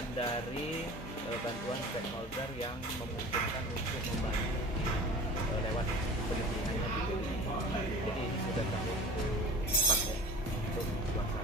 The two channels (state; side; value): normal; both; correlation 0.39